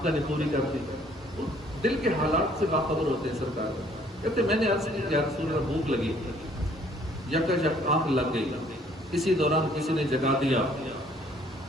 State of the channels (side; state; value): both; normal; correlation 0.60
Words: نے پوری کر دی، دل کے حالات سے باخبر ہوتے ہیں سرکار۔ کہتے میں نے عرض کی یا رسول اللہ بھوک لگی، یک آنکھ لگ گئی، اسی دوران کسی نے جگا دیا،